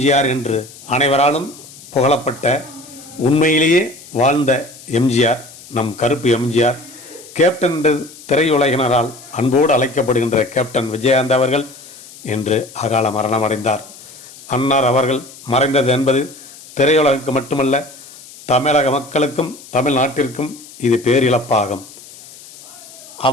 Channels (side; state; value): left; noise; hiss, 19 dB below the sound